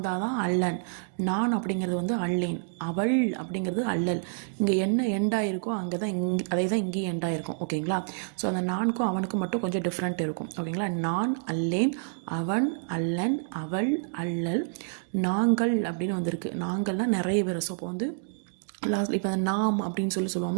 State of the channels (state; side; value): silent; left; digital silence